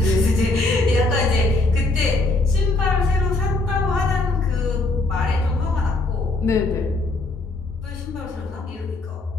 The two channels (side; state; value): right; quieter; 3.1 dB